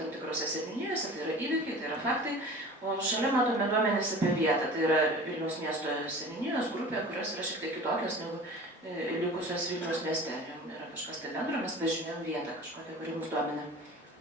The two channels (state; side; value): normal; both; correlation 0.39